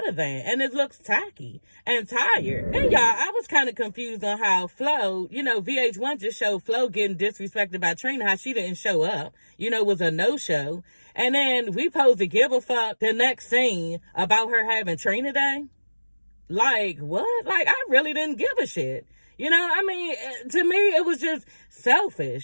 than, and it looks tacky and tired. And y'all, I was kind of confused on how Flo, VH1 just showed Flo getting disrespected by Trina, how she didn't show up, was a no-show. And then we supposed to give a fuck the next scene about her having Trina Day. What? I really didn't give a shit. To me, it was just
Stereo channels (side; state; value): both; inverted; correlation -1.00